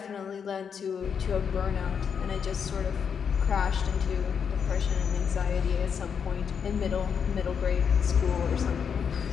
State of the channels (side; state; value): right; quieter; 6.9 dB